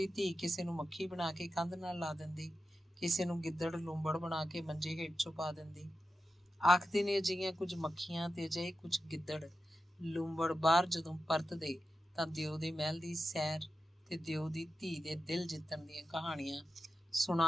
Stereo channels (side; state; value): both; normal; correlation 0.91